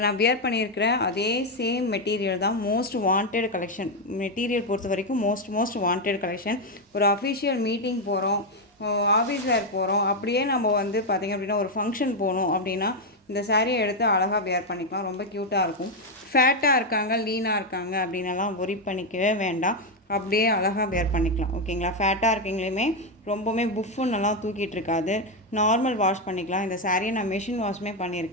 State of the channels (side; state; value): both; normal; correlation 0.05